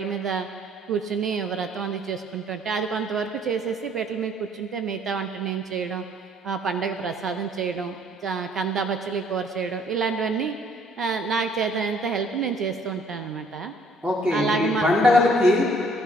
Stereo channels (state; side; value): normal; both; correlation 0.61